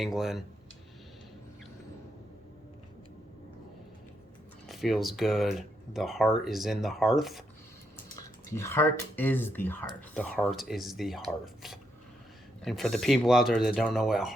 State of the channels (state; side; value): normal; both; correlation 0.79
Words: Feels good. The heart is in the hearth. The heart is the hearth. The heart is the hearth. And for the people out there that don't know what